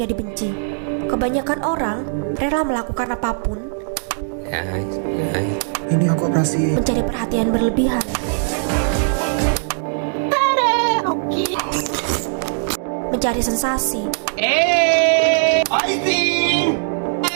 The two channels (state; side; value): silent; left; digital silence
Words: dibenci. Kebanyakan orang rela melakukan apapun Ini aku operasi. mencari perhatian berlebihan. Mencari sensasi.